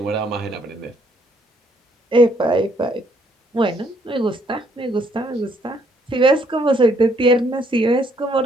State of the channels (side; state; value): both; normal; correlation 0.68